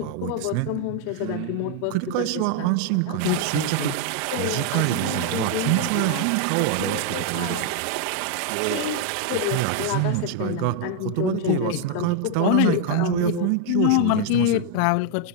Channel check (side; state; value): both; different; correlation 0.00